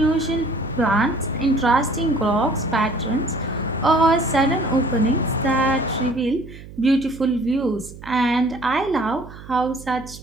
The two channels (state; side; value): noise; right; hum, 16 dB below the sound